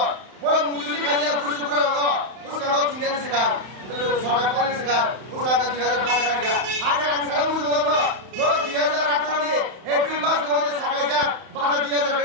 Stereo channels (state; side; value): late; left; 31 ms